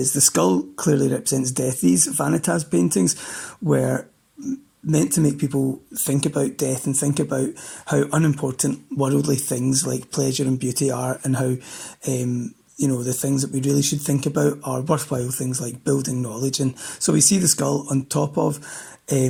the skull clearly represents death. These vanitas paintings were meant to make people think about death and think about how unimportant worldly things like pleasure and beauty are, and how the things that we really should think about are worthwhile things like building knowledge. And so we see the skull on top of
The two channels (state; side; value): identical; both; correlation 1.00